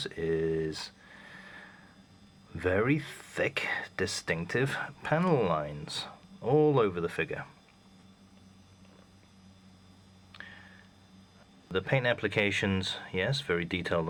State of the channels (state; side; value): identical; both; correlation 1.00